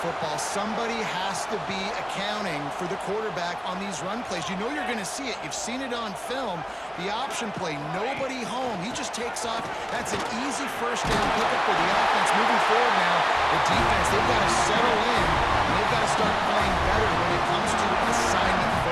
football. Somebody has to be accounting for the quarterback on these run plays. You know you're going to see it. You've seen it on film. The option play, nobody home. He just takes off. That's an easy first down pickup for the offense. Moving forward now, the defense, they've got to settle in, and they've got to start playing better when it comes to assignment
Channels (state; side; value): identical; both; correlation 1.00